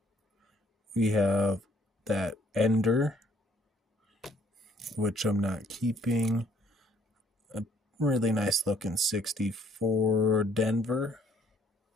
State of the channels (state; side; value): normal; both; correlation 0.63